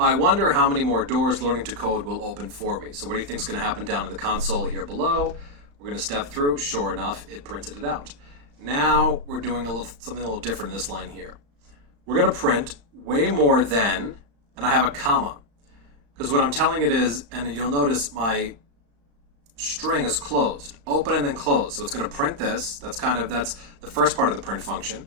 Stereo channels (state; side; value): late; left; 35 ms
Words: wonder how many more doors learning to code will open for me. So what do you think is going to happen down in the console here below? We're going to step through. Sure enough, it printed it out. Now we're doing something a little different in this line here. We're going to print way more than, and I have a comma. Because what I'm telling it is, and you'll notice my string is closed, open and then close. So it's going to print this. That's the first part of the print function.